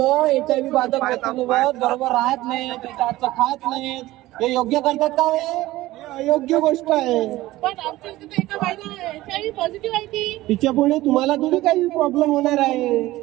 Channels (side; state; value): left; quieter; 17.2 dB